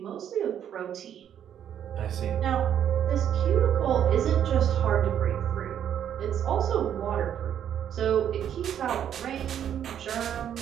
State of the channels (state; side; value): quieter; left; 9.6 dB